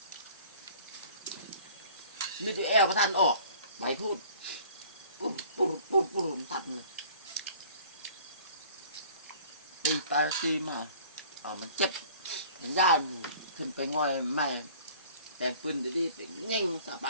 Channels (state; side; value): inverted; both; correlation -0.49